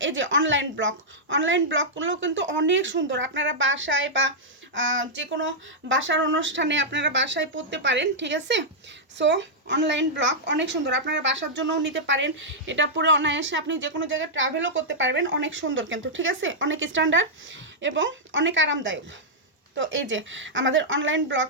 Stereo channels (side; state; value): both; normal; correlation -0.08